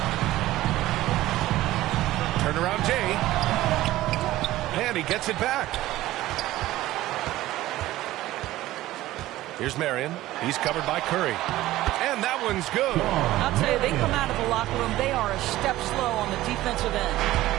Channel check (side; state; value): left; quieter; 16.0 dB